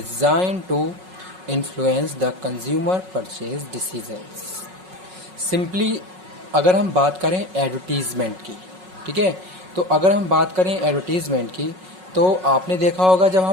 to influence the consumer purchase decisions. Simply अगर हम बात करें advertisement की, ठीक है, तो अगर हम बात करें एडवर्टीज़मेंट की तो आपने देखा होगा जब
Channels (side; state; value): left; late; 5.4 ms